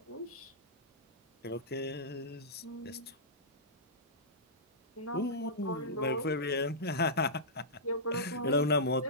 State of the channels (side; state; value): both; normal; correlation -0.15